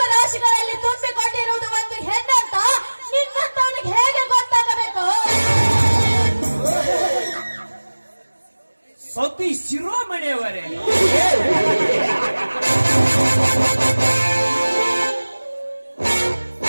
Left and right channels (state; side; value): inverted; both; correlation -1.00